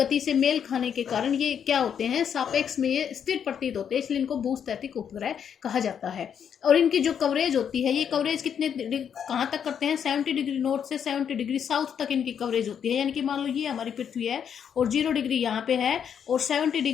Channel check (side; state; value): right; quieter; 8.1 dB